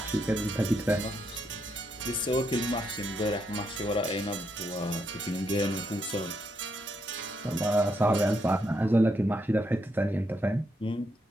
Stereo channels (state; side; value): normal; both; correlation 0.79